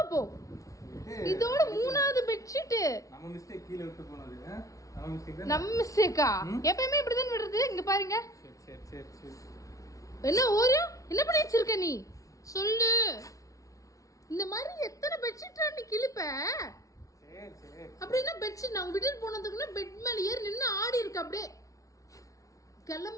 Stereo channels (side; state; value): right; late; 0.16 ms